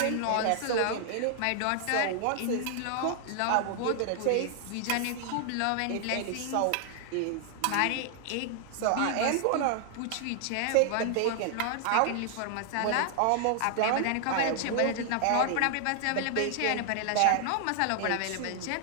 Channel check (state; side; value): different; both; correlation 0.00